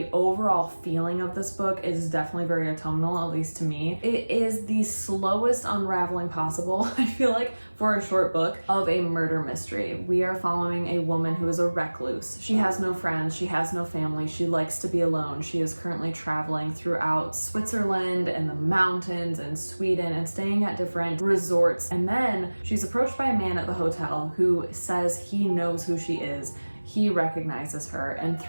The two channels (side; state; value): both; inverted; correlation -1.00